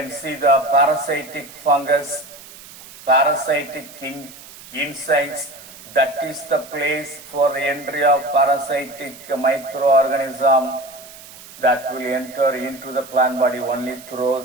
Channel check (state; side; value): noise; right; hiss, 18 dB below the sound